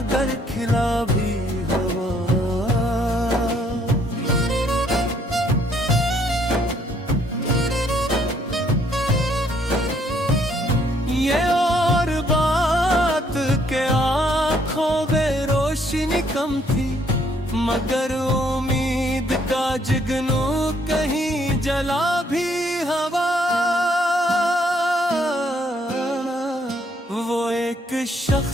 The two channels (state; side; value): normal; both; correlation 0.67